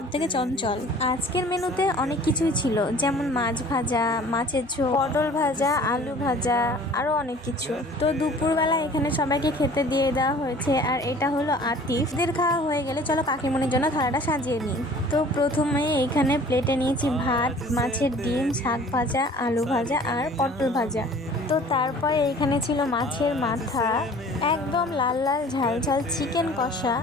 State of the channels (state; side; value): normal; both; correlation 0.48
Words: থেকে চঞ্চল। আজকের মেনুতে অনেক কিছুই ছিল, যেমন মাছ ভাজা, মাছের ঝোল, পটল ভাজা, আলু ভাজা, আরো অনেক কিছু। তো দুপুরবেলা এখানে সবাইকে খেতে দিয়ে দেওয়া হয়েছে। আর এটা হলো আতিফদের খাওয়া হয়ে গেলে চলো কাকিমণির জন্য থালাটা সাজিয়ে নিই। তো প্রথমে এখানে প্লেটে নিয়েছি ভাত, মাছের ডিম, শাক ভাজা, আলু ভাজা আর পটল ভাজা। তো তারপরে এইখানে ছিল মাছের মাথা, একদম লাল লাল ঝাল ঝাল চিকেন কষা।